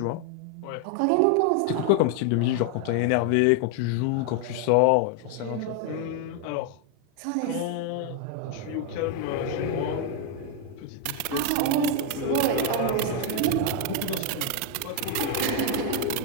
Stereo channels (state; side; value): different; both; correlation 0.00